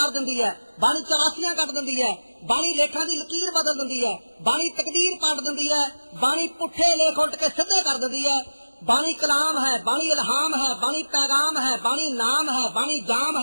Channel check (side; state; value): both; inverted; correlation -1.00